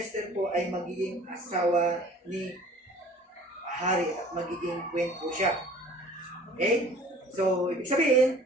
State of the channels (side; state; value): both; normal; correlation 0.49